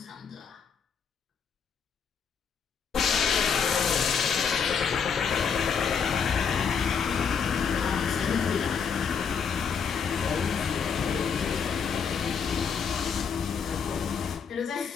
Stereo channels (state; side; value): quieter; right; 6.6 dB